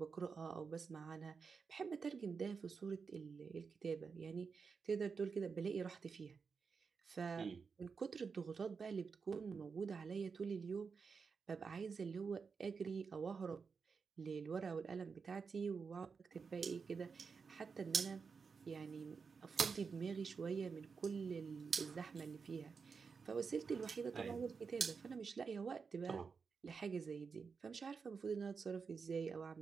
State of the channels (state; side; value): quieter; left; 5.4 dB